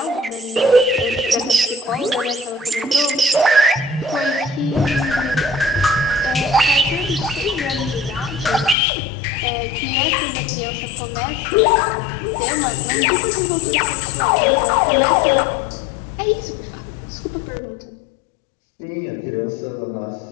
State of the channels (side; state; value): right; drops out; at 8.8 s